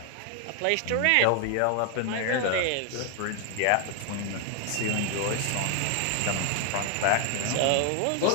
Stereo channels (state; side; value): different; both; correlation 0.00